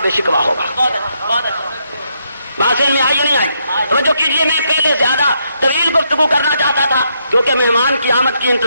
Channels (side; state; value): both; inverted; correlation -0.77